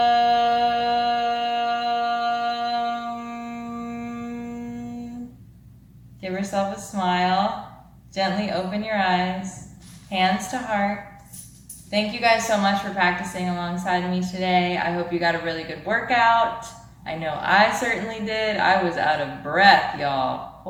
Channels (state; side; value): identical; both; correlation 1.00